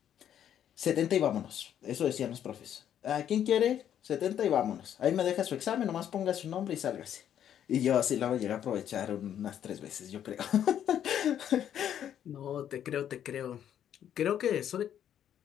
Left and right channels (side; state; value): right; quieter; 10.0 dB